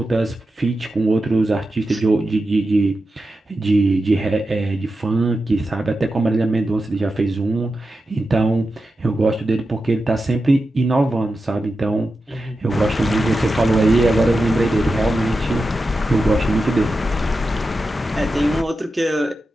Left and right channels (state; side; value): normal; both; correlation 0.91